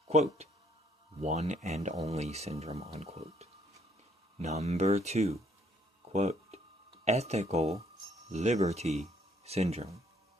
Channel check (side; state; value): both; normal; correlation 0.67